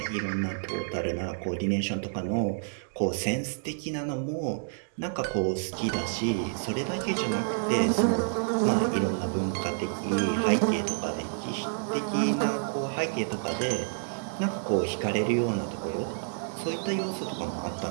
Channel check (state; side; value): silent; left; digital silence